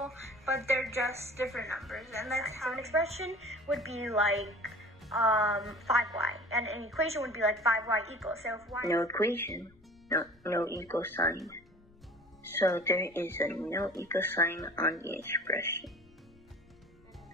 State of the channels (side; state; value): left; noise; rumble, 29 dB below the sound